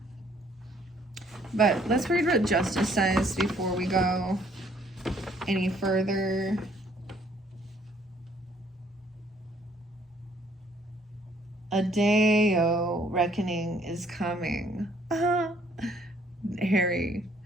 But let's read what Justice says before we go any further. A day-o reckoning is coming. Harry.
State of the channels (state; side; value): normal; both; correlation 0.63